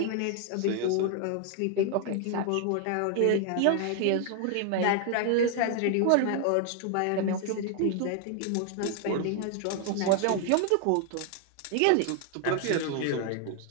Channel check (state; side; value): different; both; correlation 0.00